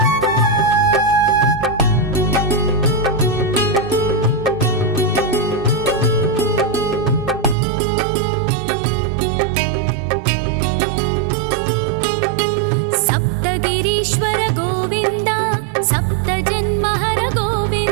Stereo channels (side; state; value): left; drops out; at 7.6 s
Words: ईश्वर गोविन्द सप्तजन्महर